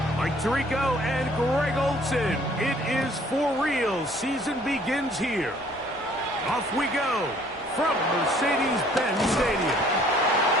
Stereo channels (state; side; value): normal; both; correlation 0.58